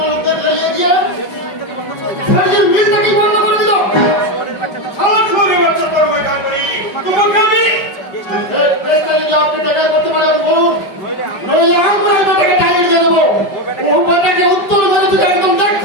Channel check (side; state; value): right; late; 5.1 ms